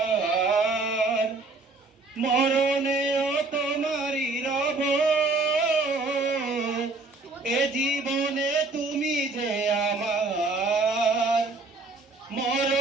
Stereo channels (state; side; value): quieter; left; 3.5 dB